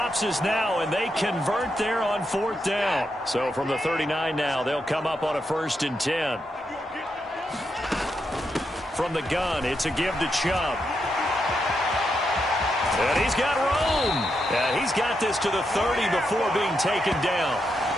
is now, and they convert there on 4th down. So from the 39 now, they'll come up on a 1st and 10. From the gun, it's a give to Chubb. And he's got room. And he's got this to the 30 before being taken down.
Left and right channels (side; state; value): both; normal; correlation 0.83